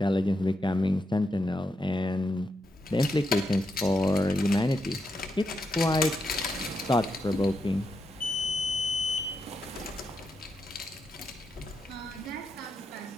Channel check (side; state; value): both; normal; correlation 0.84